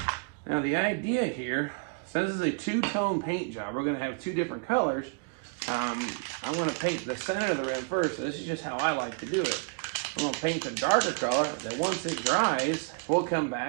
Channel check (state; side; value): quieter; left; 35.2 dB